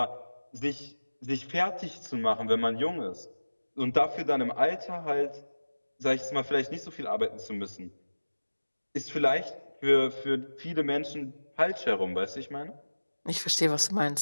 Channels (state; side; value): inverted; both; correlation -1.00